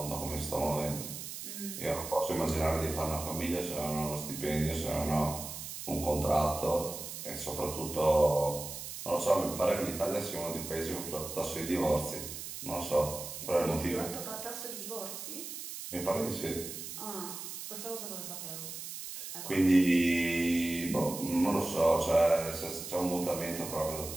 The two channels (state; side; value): noise; right; hiss, 8 dB below the sound